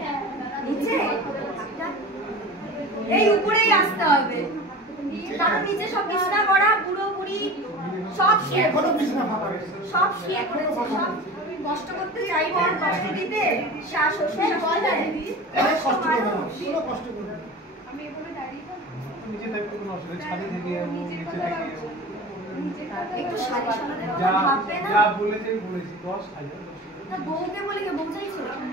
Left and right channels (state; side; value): normal; both; correlation 0.35